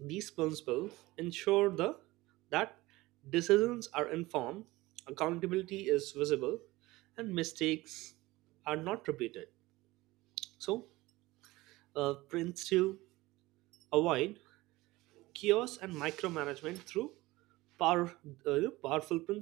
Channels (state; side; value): quieter; left; 19.7 dB